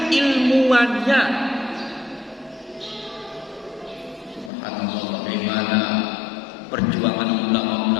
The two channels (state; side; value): drops out; right; at 4.5 s